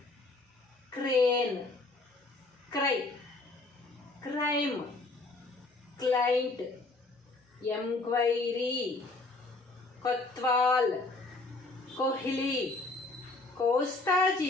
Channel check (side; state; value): right; quieter; 3.2 dB